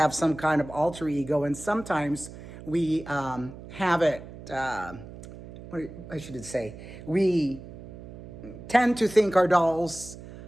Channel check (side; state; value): right; noise; hum, 15 dB below the sound